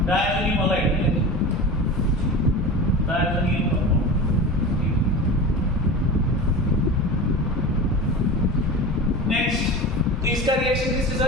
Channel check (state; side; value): normal; both; correlation 0.31